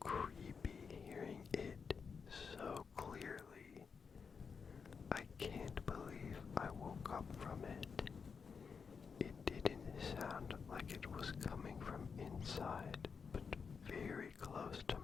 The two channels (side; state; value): right; quieter; 5.8 dB